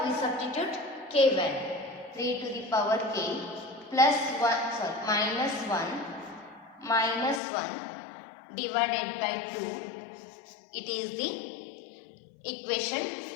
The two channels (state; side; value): drops out; right; at 7.4 s